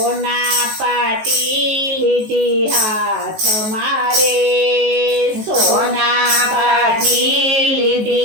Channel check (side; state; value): left; late; 19 ms